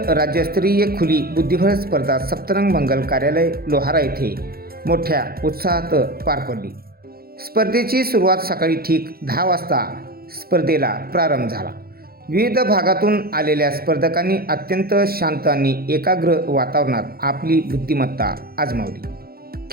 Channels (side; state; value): left; late; 0.44 ms